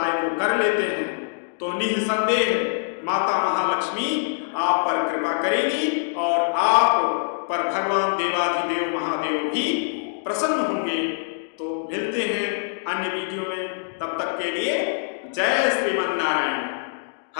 को कर लेते हैं तो निसंदेह माता महालक्ष्मी आप पर कृपा करेगी और आप पर भगवान देवाधिदेव महादेव भी प्रसन्न होंगे। तो मिलते हैं अन्य वीडियो में, तब तक के लिए जय श्रीमन नारायण।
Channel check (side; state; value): right; silent; digital silence